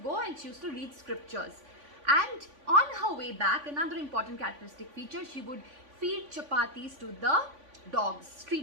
and she used to read scriptures. And on her way back, another important characteristic feature, she would feed chapatis to the dogs,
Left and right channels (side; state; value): left; late; 3.5 ms